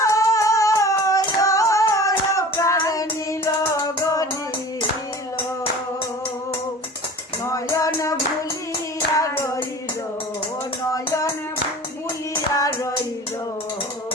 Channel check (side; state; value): both; normal; correlation 0.40